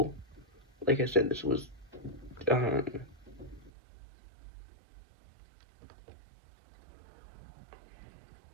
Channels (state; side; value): drops out; left; at 3.7 s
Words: Like I said, this was